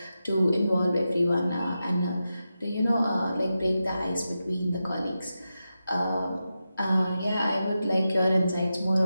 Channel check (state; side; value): inverted; both; correlation -0.90